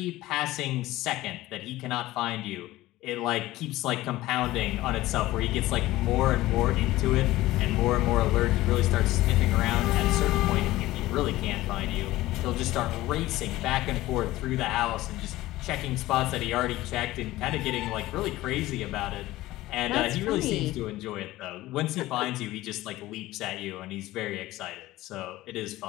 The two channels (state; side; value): quieter; right; 17.0 dB